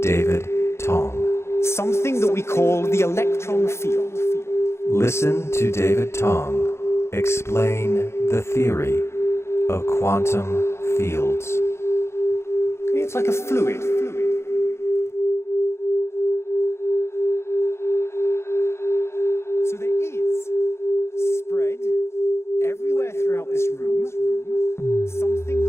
David Tong. something that we call the electron field. Listen to David Tong explain the theory of quantum fields. It's like a fluid. So there is spread everywhere throughout this room, something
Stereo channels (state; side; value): late; right; 0.13 ms